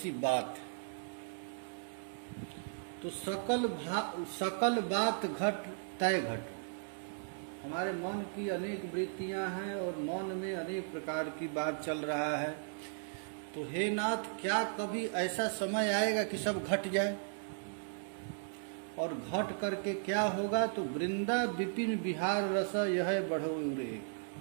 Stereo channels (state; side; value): silent; left; 54 dB below the other